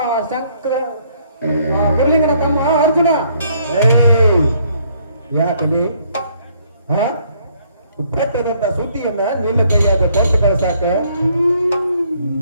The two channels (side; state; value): both; inverted; correlation -0.66